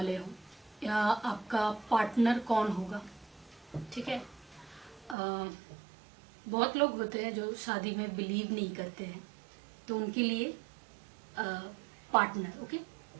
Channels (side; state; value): left; drops out; at 5.2 s